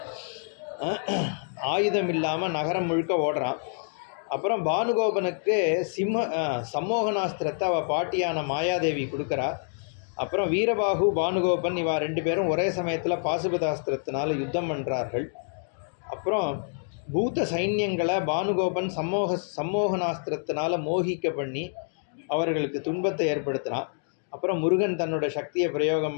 ஆயுதம் இல்லாமல் நகரம் முழுக்க ஓடுறான். அப்புறம் பானுகோபனுக்கு சம்மோகனாஸ்திரத்தை அவள் பாட்டியான மாயாதேவி கொடுக்குறா. அப்புறம் வீரபாகு பானுகோபன் இவா 2 பேரும் ஒரே சமயத்தில் பாசுபதாஸ்திரத்தினால் யுத்தம் பண்ணுறார்கள். அப்புறம் பூத சைன்யங்களை பானுகோபன் சம்மோகனாஸ்திரத்தினால் மோகிக்க பண்ணி அவர்களுக்கு துன்பத்தை ஏற்படுத்தினான். அப்புறம் முருகன் தன்னோட சக்தியை பிரயோகம்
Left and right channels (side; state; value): right; silent; 60 dB below the other